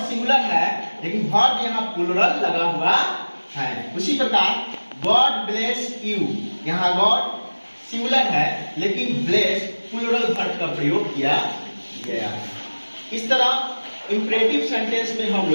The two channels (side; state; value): both; inverted; correlation -1.00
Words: सिंगुलर है लेकिन वर्ब यहाँ प्लूरल लगा हुआ है। उसी प्रकार गॉड ब्लेस यू, यहाँ गॉड सिंगुलर है लेकिन ब्लेस प्लूरल वर्ब का प्रयोग किया गया है। इस तरह इंपरेटिव सेंटेंस में हम